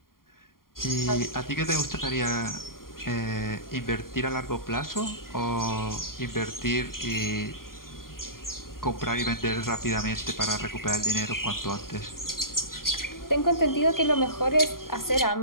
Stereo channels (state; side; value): late; right; 0.91 ms